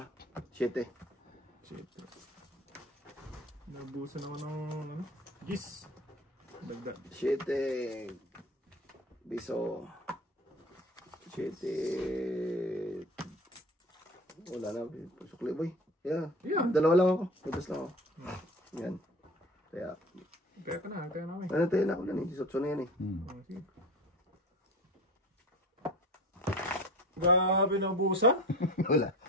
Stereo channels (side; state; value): both; normal; correlation 0.36